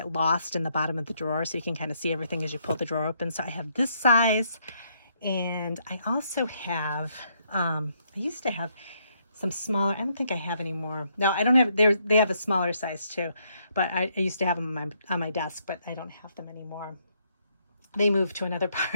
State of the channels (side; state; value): both; inverted; correlation -0.73